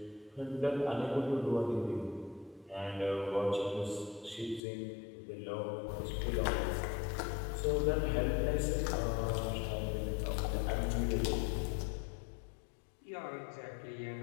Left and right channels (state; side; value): drops out; right; at 4.6 s